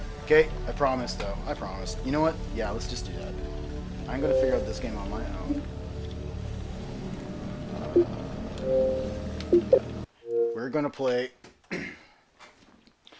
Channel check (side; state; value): both; identical; correlation 1.00